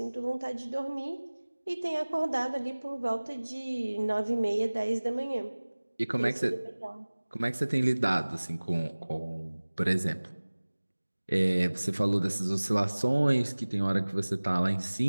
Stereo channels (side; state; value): both; inverted; correlation -1.00